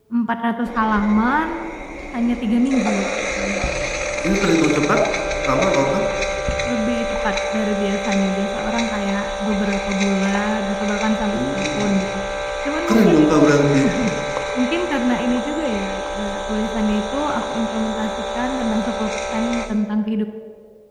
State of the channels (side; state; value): both; identical; correlation 1.00